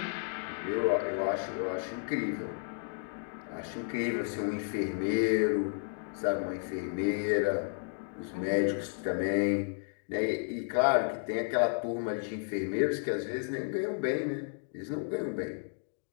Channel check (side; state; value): right; silent; 56 dB below the other